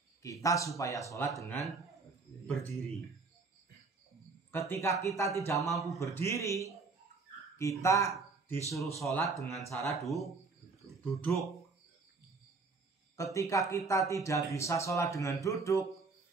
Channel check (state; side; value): quieter; left; 4.2 dB